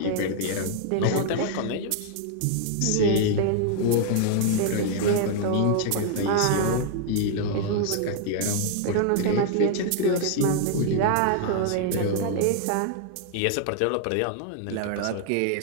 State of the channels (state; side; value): different; both; correlation 0.00